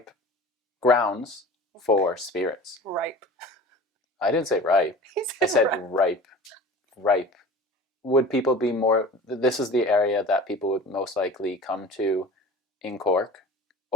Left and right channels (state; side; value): normal; both; correlation 0.39